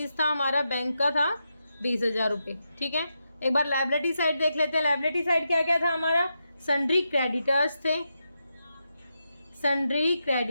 था हमारा, बैंक का था 20,000 रुपये। ठीक है, एक बार लायबिलिटी साइड देख लेते हैं। लायबिलिटी साइड क्या क्या था हमारा, सन्ड्री क्रेडिटर्स थे। सन्ड्री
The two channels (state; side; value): inverted; both; correlation -0.86